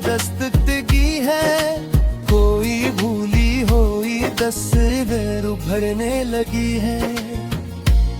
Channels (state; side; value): identical; both; correlation 1.00